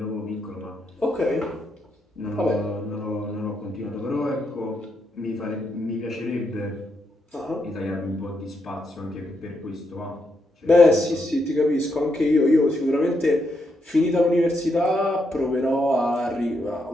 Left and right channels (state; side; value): normal; both; correlation 0.80